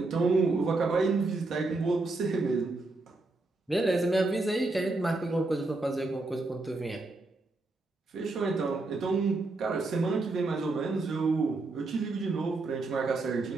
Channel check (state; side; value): quieter; left; 3.2 dB